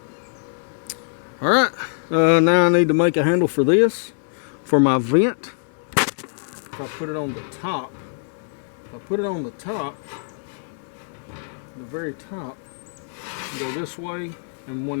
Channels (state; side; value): silent; right; digital silence